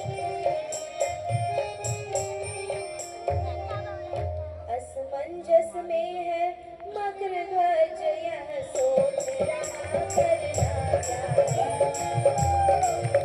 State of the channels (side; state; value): both; identical; correlation 1.00